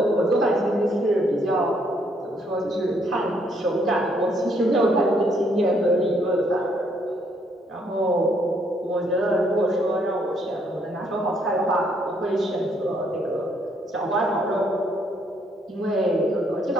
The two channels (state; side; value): normal; both; correlation 0.70